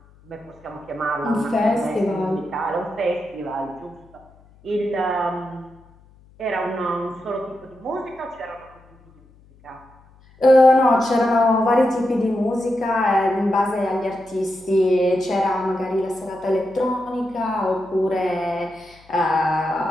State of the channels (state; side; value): noise; left; hum, 28 dB below the sound